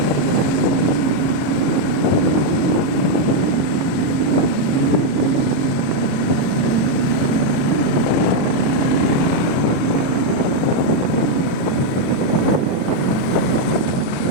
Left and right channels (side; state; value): right; late; 22 ms